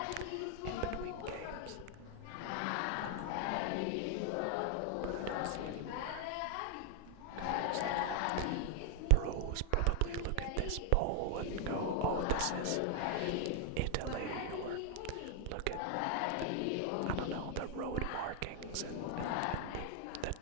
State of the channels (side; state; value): both; different; correlation 0.00